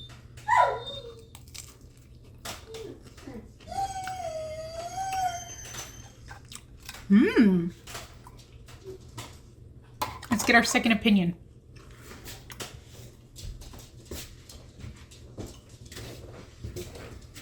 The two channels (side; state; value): both; identical; correlation 1.00